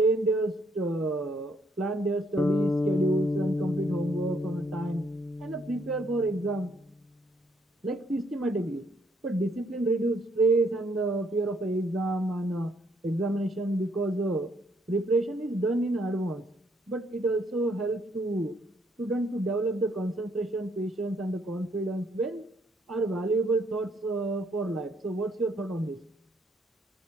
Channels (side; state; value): both; normal; correlation 0.69